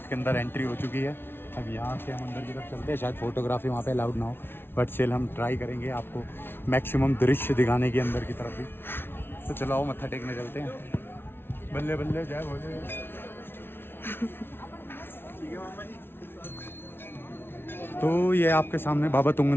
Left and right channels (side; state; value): right; late; 0.11 ms